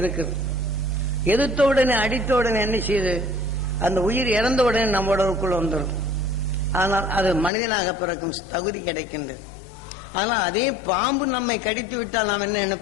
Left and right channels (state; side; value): drops out; right; at 7.5 s